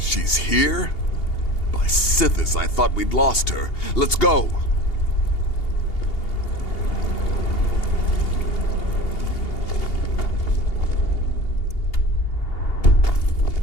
here? By Sithis, I thought we'd lost her. Let's go.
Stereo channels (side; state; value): right; late; 2.8 ms